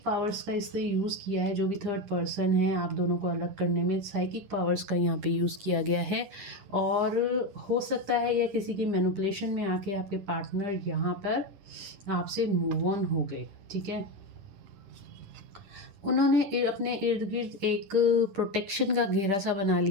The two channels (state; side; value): late; left; 10 ms